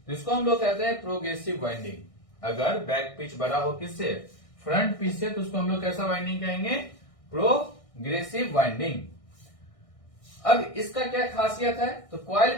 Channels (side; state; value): right; late; 1.6 ms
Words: तो इसको हम लोग कहते हैं प्रोग्रेसिव वाइंडिंग। अगर बैक पिच बड़ा हो किससे? फ्रंट पिच से, तो उसको हम लोग कैसा वाइंडिंग कहेंगे? Progressive winding. अब इसका क्या खासियत है? तो coil